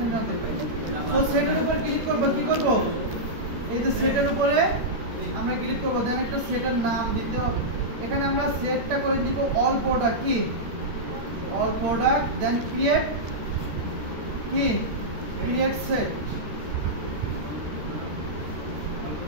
না করবেন। তো সেটের উপর ক্লিক করব, কি করব? এই যে সেটের উপরে আমরা ক্লিক করব, দেন একটা সেটের নাম দিতে হবে। এখানে আমরা সেটটা করে দিব অল প্রোডাক্ট, কি অল প্রোডাক্ট, দেন ক্রিয়েট সেট।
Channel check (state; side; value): late; left; 13 ms